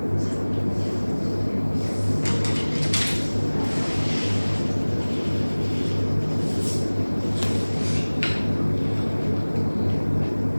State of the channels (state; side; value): inverted; both; correlation -1.00